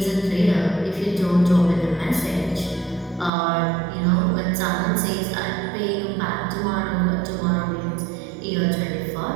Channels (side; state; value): left; drops out; at 3.3 s